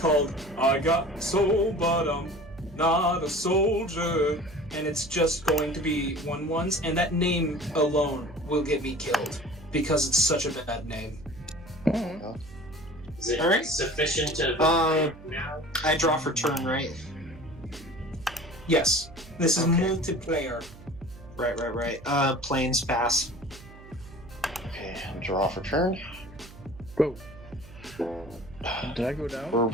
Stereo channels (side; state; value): right; noise; hum, 19 dB below the sound